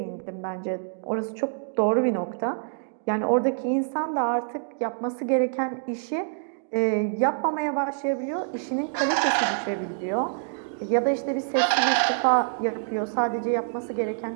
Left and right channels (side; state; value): left; silent; digital silence